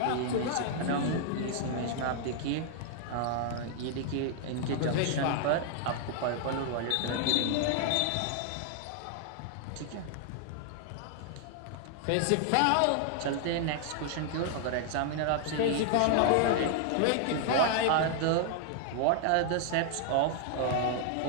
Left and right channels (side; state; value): both; different; correlation 0.00